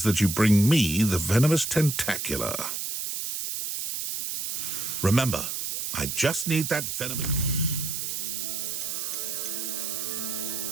that you bring me the venomous tentacular. Remember, I just need that venomous...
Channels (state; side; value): noise; right; hiss, 3 dB below the sound